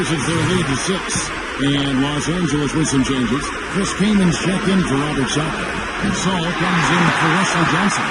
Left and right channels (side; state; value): both; identical; correlation 1.00